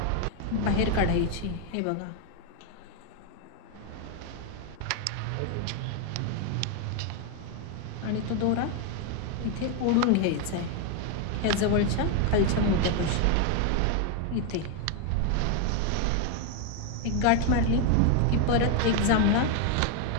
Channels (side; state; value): both; different; correlation 0.01